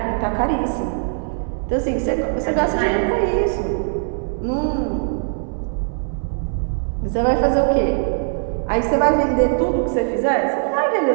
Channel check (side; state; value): left; silent; 65 dB below the other